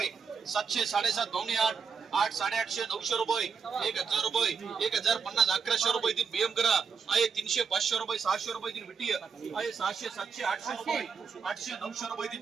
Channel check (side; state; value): left; quieter; 6.0 dB